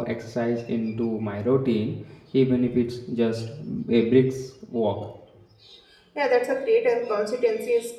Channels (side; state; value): both; identical; correlation 1.00